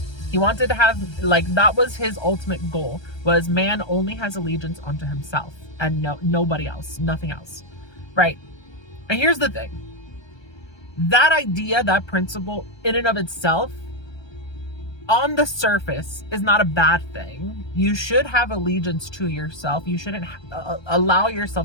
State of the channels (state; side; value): late; right; 1.3 ms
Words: He wanted to have, like, that was his ultimate goal, was man only has allegiance onto himself and nobody else, nothing else, right? And here's the thing. That idea, that principle in and of itself, on the surface, is not a bad thing. You should have allegiance to yourself. You shouldn't allow